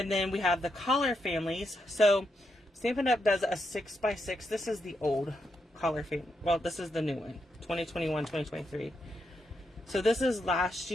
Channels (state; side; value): normal; both; correlation 0.82